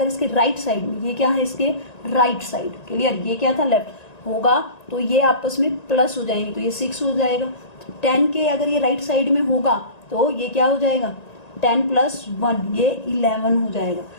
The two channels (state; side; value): late; right; 1.9 ms